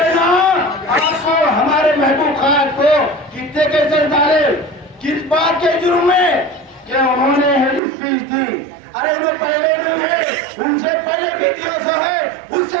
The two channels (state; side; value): drops out; left; at 7.8 s